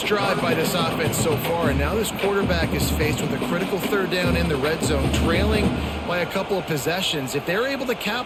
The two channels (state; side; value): identical; both; correlation 1.00